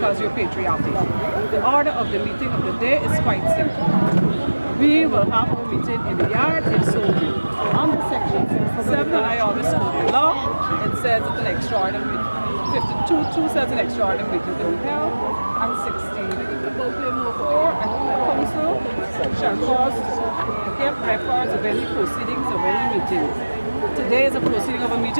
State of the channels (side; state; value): both; inverted; correlation -1.00